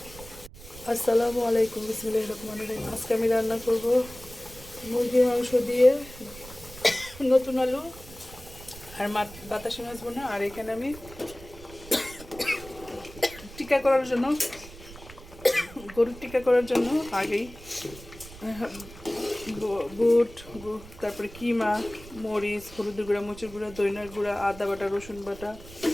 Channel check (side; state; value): right; noise; rumble, 17 dB below the sound